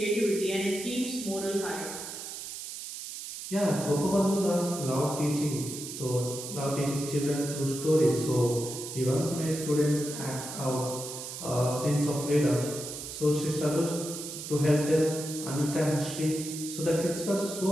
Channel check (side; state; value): right; noise; hiss, 8 dB below the sound